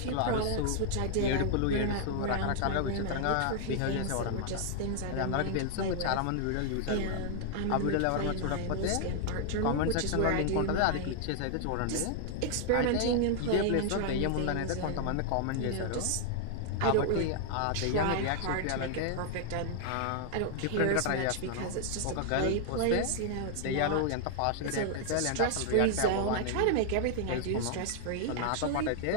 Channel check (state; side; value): different; both; correlation 0.00